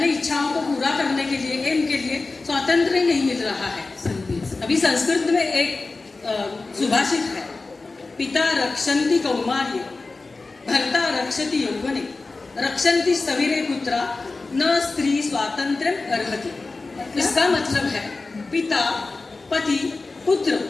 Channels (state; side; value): quieter; right; 3.6 dB